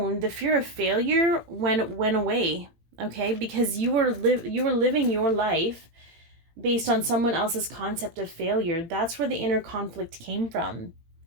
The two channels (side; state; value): left; late; 18 ms